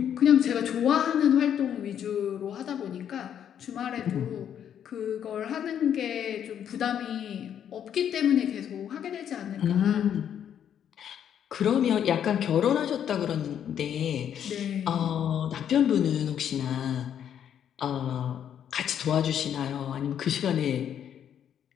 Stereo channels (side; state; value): right; quieter; 9.3 dB